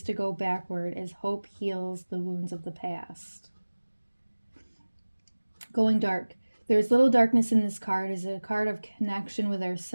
to go backward as hope heals the wounds of the past. Going dark. There is little darkness in this card. It is a card of connection with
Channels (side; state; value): both; inverted; correlation -1.00